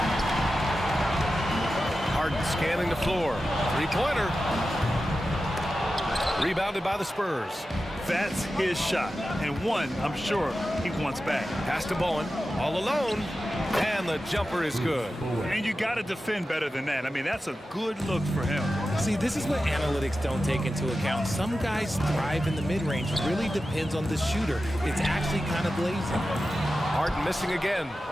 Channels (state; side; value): normal; both; correlation 0.93